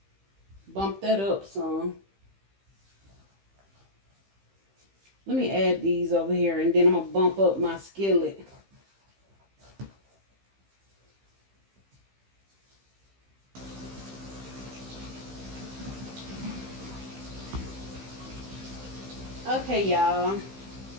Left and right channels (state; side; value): late; left; 15 ms